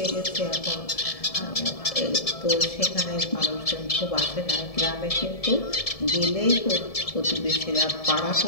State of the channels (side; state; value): right; late; 1.7 ms